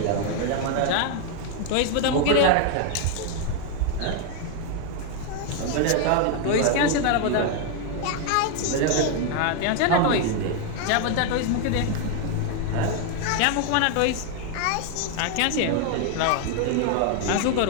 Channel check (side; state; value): both; different; correlation 0.01